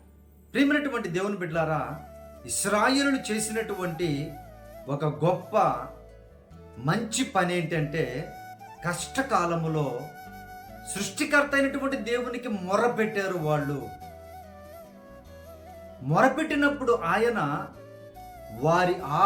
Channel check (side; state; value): both; identical; correlation 1.00